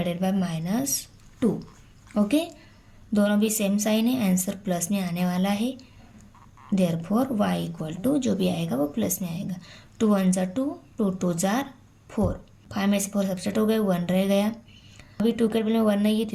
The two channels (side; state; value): both; identical; correlation 1.00